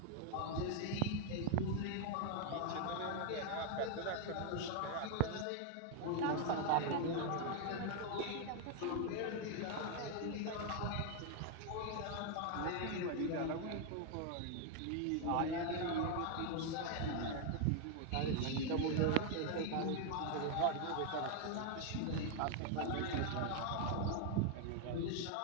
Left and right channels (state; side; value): different; both; correlation 0.00